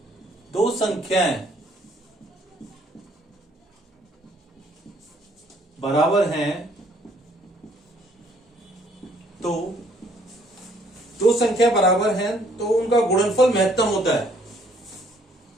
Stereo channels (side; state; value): both; normal; correlation 0.63